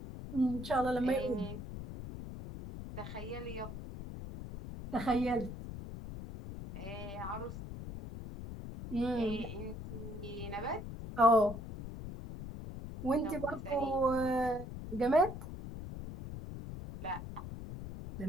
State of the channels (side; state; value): left; noise; rumble, 9 dB below the sound